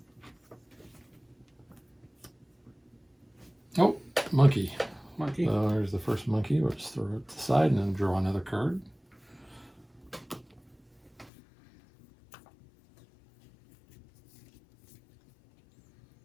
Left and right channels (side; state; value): right; drops out; at 11.3 s